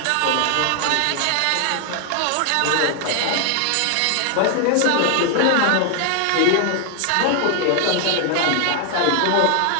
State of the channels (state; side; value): different; both; correlation 0.00